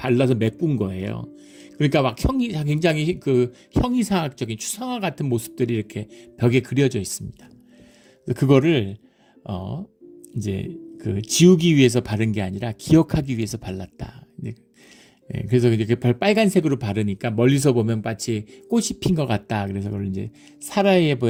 메꾼 거예요. 그러니까 막 굉장히 그 형이상학적인 추상화 같은 모습들이 이렇게 벽에 그려져 있습니다. 그거를 이제 그 지우기 위해서 바른 게 아니라 기억하기 위해서 발랐다. 그래서 이렇게 빨간색으로 바르니까 멀리서 보면 마치 꽃이 핀 것 같다. 그래서 그걸 이제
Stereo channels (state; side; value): identical; both; correlation 1.00